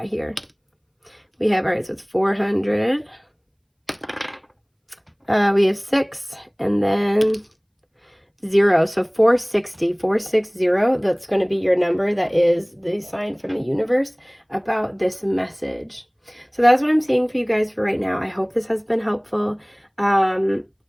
here. We have, all right, so it's 400. We have 6, and then 0. So 460, 460, that's going to be your number. That is the sign from the universe about this message. So that's what I'm seeing for you guys for right now. I hope this has been helpful.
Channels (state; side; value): identical; both; correlation 1.00